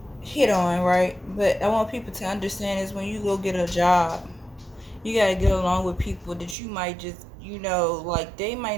hit on, right? But I want people to understand is when you go get a job, you gotta get along with people that you might just, like they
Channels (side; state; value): left; drops out; at 6.6 s